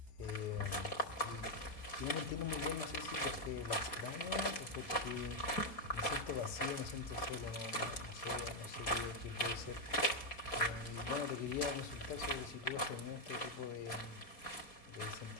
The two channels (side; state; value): right; late; 4.2 ms